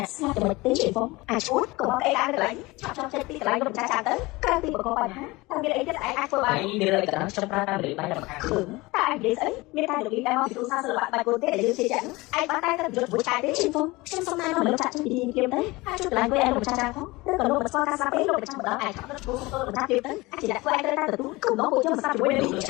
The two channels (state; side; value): quieter; right; 22.0 dB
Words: ស្លាប់តែមិនទេជួយបងអាចឈួតក៏បងអីឡើងកន្លែងឆាប់ចេញពីកន្លែងលោកម្ចាស់ចាទៅក្រៅពីបកកបញ្ហាតែមានអីទៀតឯងអាចធ្វើបាន ឯងមានរឿងអីក៏ដោយខ្ញុំប្រើតាមលេខបាយតែមកខាង ឃើញតែឯងនិយាយស្អីមានតែលោកលីដែលមកពីគ្រូសាស្ត្រសិល្បៈបែបគោលទេដែលយើងជឿជាក់ឯងបានតែទៅយកមួយឆាយទេជួយបងខ្ញុំសុំណែនាំលោកចាក់ចេញពីទីនេះទៅអាចជួយកន្លែងវិញឯងលោកម្ចាស់ចាផងឬក៏លោកមិនស្គាល់ការស្លាប់ទេលោកម្ចាស់ម្ដងឯងឆាប់ទៅគ្រូសុំទៅលោកម្ចាស់ទៀតទៅអាចជាអ្នកធ្វើឯងត្រូវតែទទួលគុំដល់ពួកយើងមិនស្ដាប់ជាមួយនឹង លោក